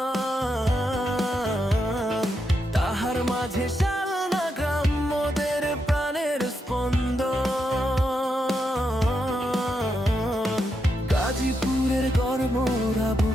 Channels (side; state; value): both; normal; correlation 0.83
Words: তাহার মাঝে শালনা গ্রাম মোদের প্রাণের স্পন্দন। গাজীপুরের গর্বরা